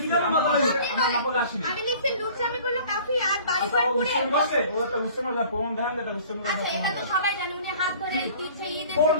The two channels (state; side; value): inverted; both; correlation -0.49